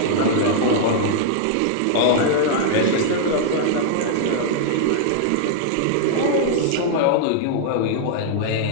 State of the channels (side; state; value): both; different; correlation -0.01